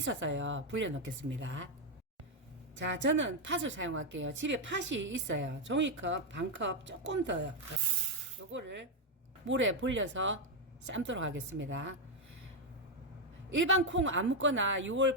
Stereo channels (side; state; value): both; normal; correlation 0.03